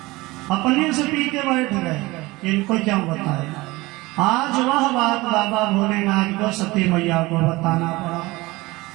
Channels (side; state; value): left; quieter; 21.2 dB